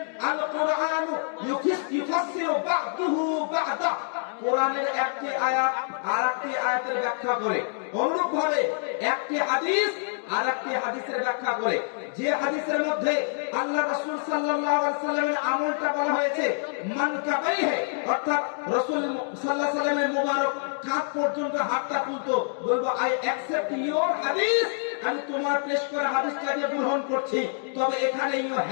আল কোরআন ইউফাসসিরু বা'দুহু বা'দা, কোরআনের একটি আয়াত আরেকটি আয়াতের ব্যাখ্যা করে। অনুরূপ ভাবে একটি হাদিস আরেকটি হাদিসের ব্যাখ্যা করে। যে হাদিসের মধ্যে আল্লাহ রাসূল সাল্লাল্লাহু আলাইহি ওয়াসাল্লামের আমলটা বলা হয়েছে মানকাবাইহি, অর্থাৎ রাসূল সাল্লাল্লাহু আলাইহি ওয়াসাল্লামের মুবারক কাঁধ পর্যন্ত হাতটা তুলতো, বলবো আই অ্যাকসেপ্ট ইওর হাদিস, আমি তোমার পেশ করা হাদিসটাকে গ্রহণ করছি। তবে এখানে ইউ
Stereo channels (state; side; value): silent; right; digital silence